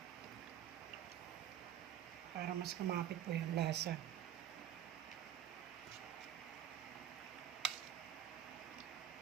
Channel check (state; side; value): quieter; left; 10.6 dB